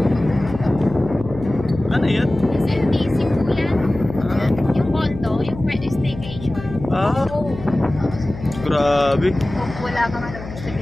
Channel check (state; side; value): noise; left; hum, 12 dB below the sound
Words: Ano yan? SMTC po yan. Yung condo, yung pwede staycation. Grabe. Wala ka nga